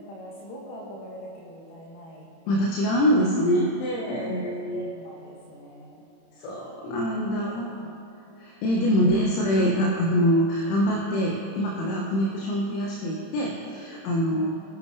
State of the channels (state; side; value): late; right; 31 ms